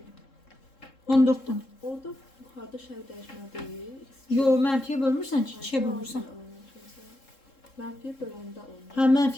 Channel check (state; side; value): late; right; 3.7 ms